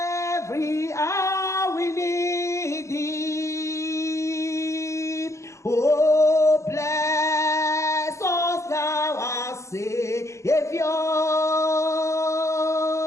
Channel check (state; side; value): late; right; 0.14 ms